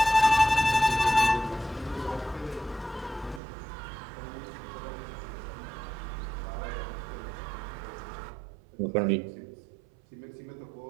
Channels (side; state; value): left; drops out; at 3.4 s